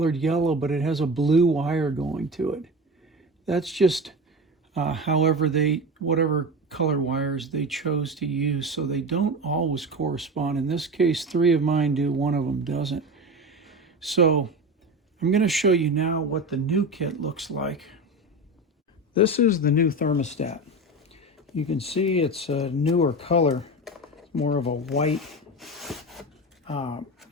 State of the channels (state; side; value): normal; both; correlation 0.26